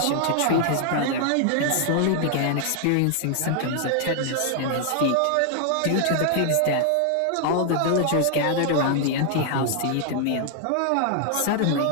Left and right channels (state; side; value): different; both; correlation 0.00